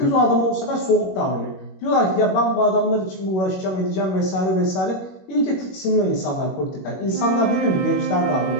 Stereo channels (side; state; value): right; late; 21 ms